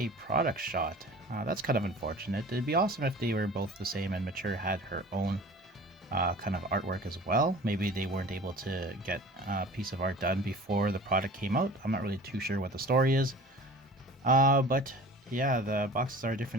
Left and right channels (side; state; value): both; normal; correlation 0.42